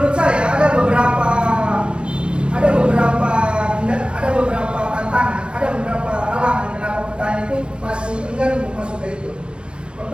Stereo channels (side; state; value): left; late; 0.055 ms